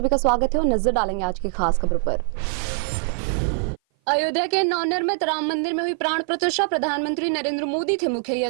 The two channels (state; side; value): silent; left; 56 dB below the other